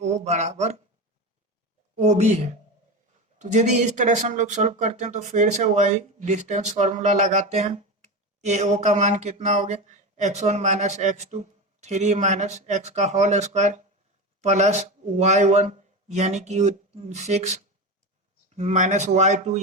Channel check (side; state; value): both; normal; correlation 0.21